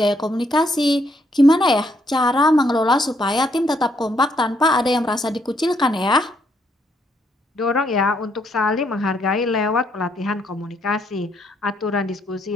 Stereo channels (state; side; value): normal; both; correlation 0.73